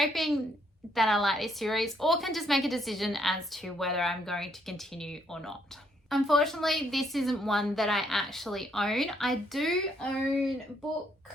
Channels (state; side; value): normal; both; correlation 0.71